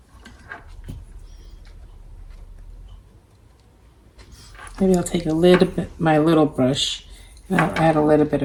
Maybe I'll take a little bit, my little brush, and I'll add a little bit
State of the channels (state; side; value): identical; both; correlation 1.00